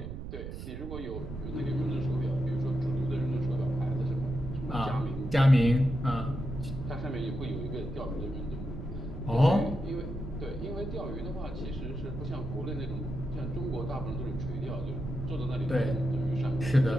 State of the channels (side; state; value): right; noise; rumble, 8 dB below the sound